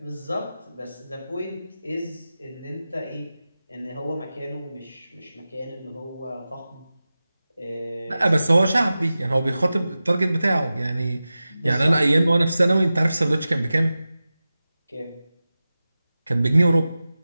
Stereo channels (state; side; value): inverted; both; correlation -0.95